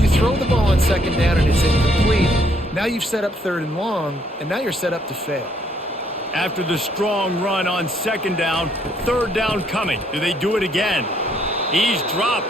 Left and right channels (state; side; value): normal; both; correlation 0.68